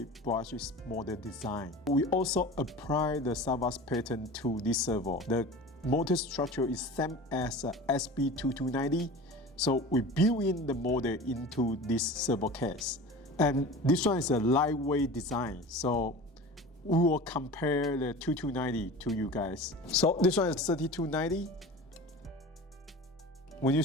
brushless model design. We also apply the SAVOX pattern to this servo. The motor structure is same as SB-3290. So we build in the model into this servo case. And this one is a lightweight design. So we will compare the 2290 to you guys. So this one is 3290. When you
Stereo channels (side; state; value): both; normal; correlation 0.36